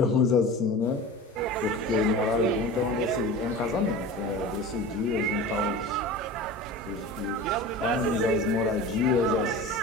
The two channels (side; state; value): both; normal; correlation 0.34